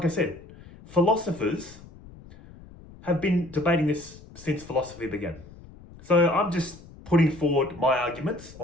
I said, philosophers have been debating this since philosophy began. So I'm just putting forward my arguments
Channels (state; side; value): noise; left; rumble, 20 dB below the sound